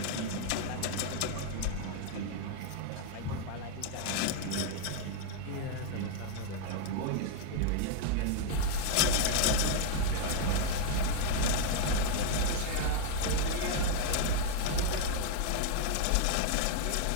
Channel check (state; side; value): different; both; correlation 0.01